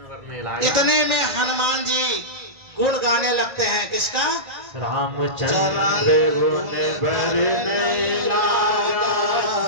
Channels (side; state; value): left; late; 1.9 ms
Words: इतने में हनुमान जी गुण गाने लगते हैं। किसका? रामचंद्र गुण बरने लगा,